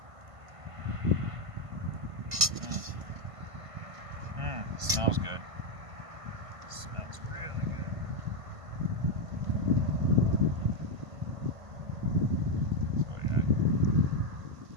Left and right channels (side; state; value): left; late; 1.5 ms